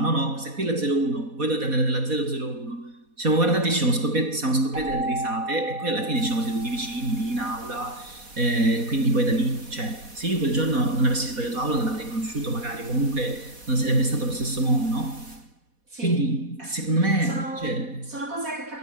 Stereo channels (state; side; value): late; left; 4.1 ms